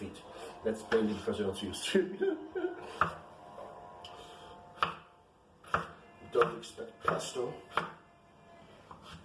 That's mainly because they're not used to. Don't expect pesto.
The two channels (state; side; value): identical; both; correlation 1.00